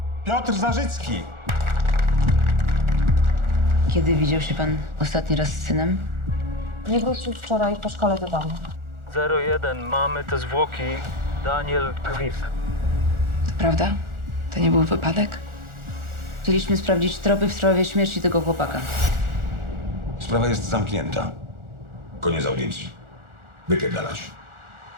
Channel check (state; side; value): late; left; 1.4 ms